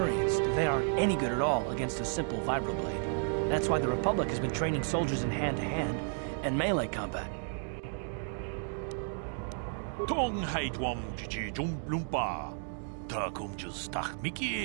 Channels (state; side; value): silent; left; 56 dB below the other